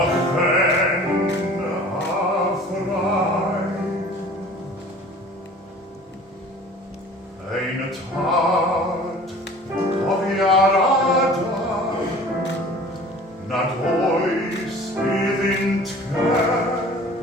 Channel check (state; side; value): normal; both; correlation 0.45